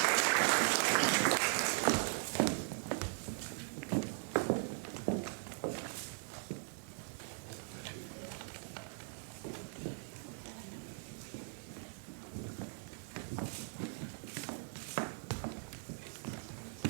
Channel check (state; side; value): silent; left; 51 dB below the other